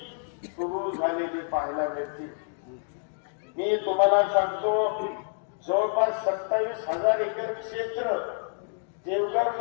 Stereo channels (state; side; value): silent; right; digital silence